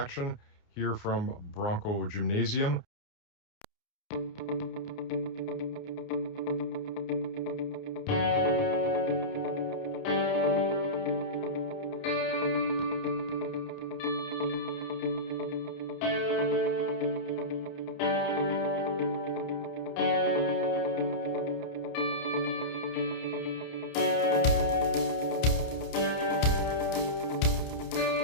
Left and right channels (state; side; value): late; right; 29 ms